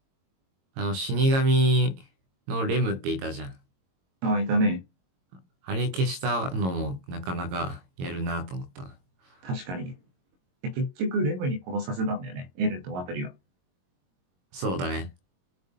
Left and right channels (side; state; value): left; late; 22 ms